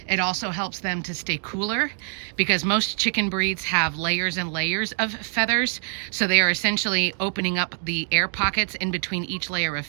It also helps them to stay cooler because most chicken breeds have layers and layers of feathers. So they are essentially opening up the air pockets in between each layer of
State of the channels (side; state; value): left; silent; 62 dB below the other